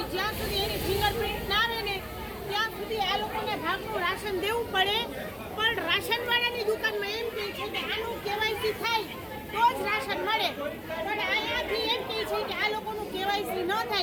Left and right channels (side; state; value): both; identical; correlation 1.00